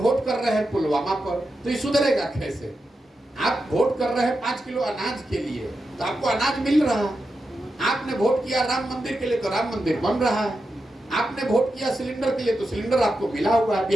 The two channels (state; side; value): normal; both; correlation 0.89